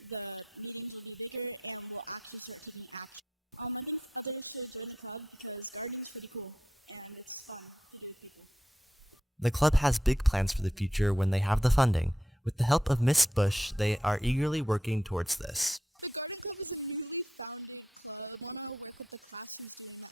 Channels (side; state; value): both; normal; correlation 0.82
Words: The club has big plans for the future when they have the funding. With the help of Miss Bush, they are eagerly working towards this.